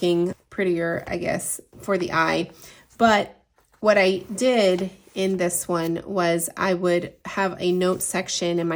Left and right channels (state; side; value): identical; both; correlation 1.00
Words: prettier, I guess, for the eye. But what I did in this one was I would have a note section, and